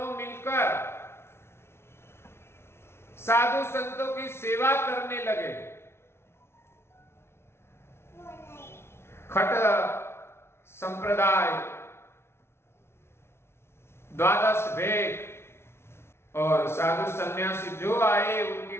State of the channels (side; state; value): right; late; 0.12 ms